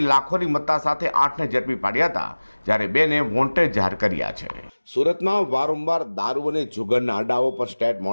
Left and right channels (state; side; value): inverted; both; correlation -1.00